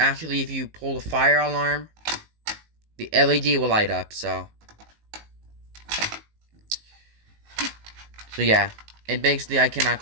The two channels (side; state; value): left; late; 19 ms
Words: if you pull the fire alarm, the LED will light up, so yeah. And basically I cannot